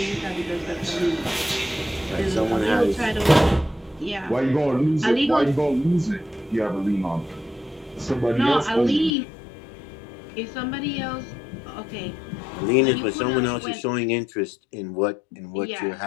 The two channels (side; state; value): right; drops out; at 9.2 s